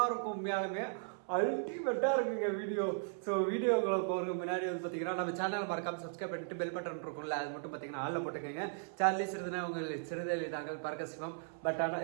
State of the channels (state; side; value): silent; left; 53 dB below the other